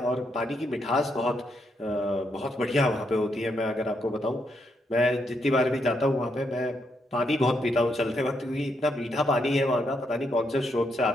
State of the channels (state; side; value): normal; both; correlation 0.78